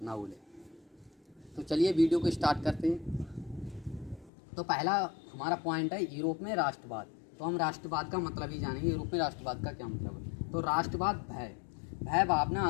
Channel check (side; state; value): right; drops out; at 4.3 s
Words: ना भूलें। तो चलिए वीडियो को स्टार्ट करते हैं। तो पहला हमारा पॉइंट है यूरोप में राष्ट्रवाद। तो हम राष्ट्रवाद का मतलब ही जानेंगे, यूरोप में राष्ट्रवाद का क्या मतलब है। तो राष्ट्रवाद भय भावना